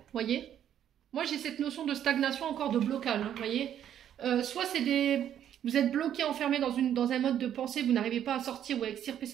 voyez. Moi j'ai cette notion de stagnation encore, de blocage, hein, voyez. Soit c'est vous êtes bloqué, enfermé dans un mode de pensée, vous n'arrivez pas à sortir ou à extirper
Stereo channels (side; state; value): left; quieter; 10.2 dB